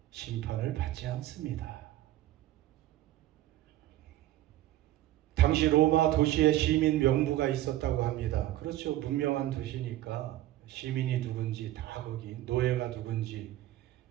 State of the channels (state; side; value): quieter; left; 14.9 dB